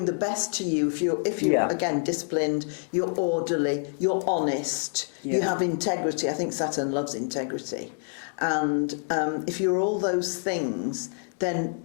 the best to you if you're again disciplined, you're orderly, you're honest, you have integrity. I think Saturn loves integrity. And if you're all those things, then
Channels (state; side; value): silent; right; 60 dB below the other